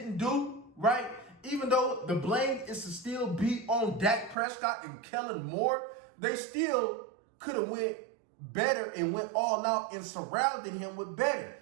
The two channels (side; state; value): left; drops out; at 4.4 s